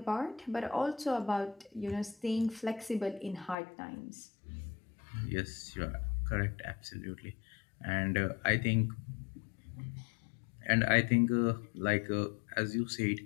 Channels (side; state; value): right; drops out; at 3.6 s